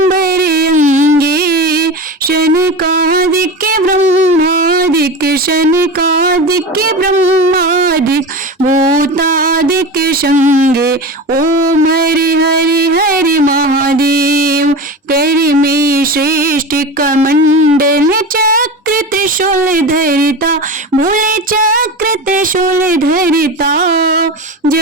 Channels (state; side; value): normal; both; correlation 0.27